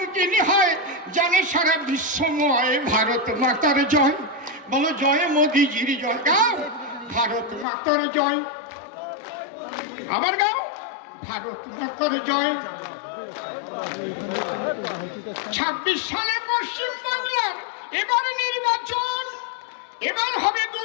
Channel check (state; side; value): drops out; right; at 7.7 s